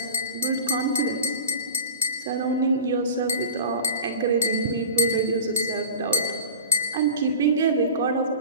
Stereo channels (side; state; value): both; inverted; correlation -0.32